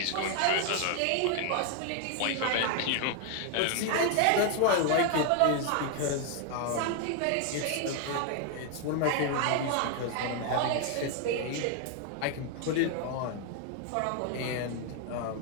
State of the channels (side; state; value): both; different; correlation 0.00